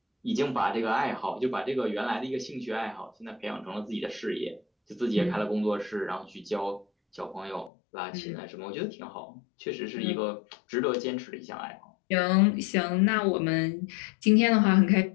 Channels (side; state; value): right; drops out; at 7.7 s